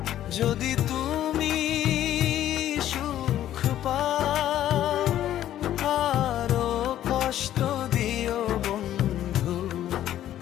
যদি তুমি সুখ পাও, আরো কষ্ট দিও বন্ধু,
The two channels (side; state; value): right; quieter; 12.1 dB